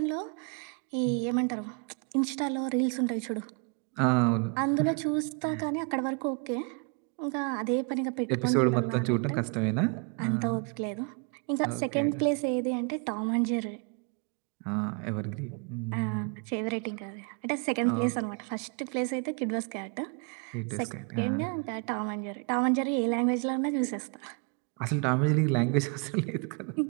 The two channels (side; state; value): left; quieter; 37.4 dB